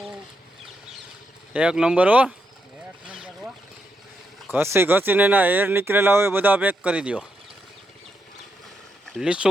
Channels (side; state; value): both; normal; correlation 0.82